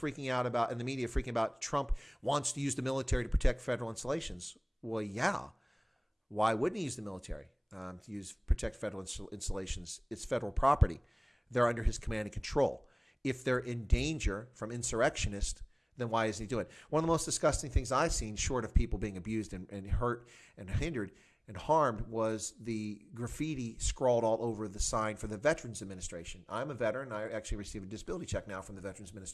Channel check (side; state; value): both; identical; correlation 1.00